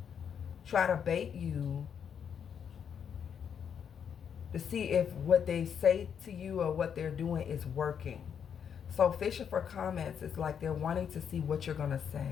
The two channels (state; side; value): quieter; right; 7.7 dB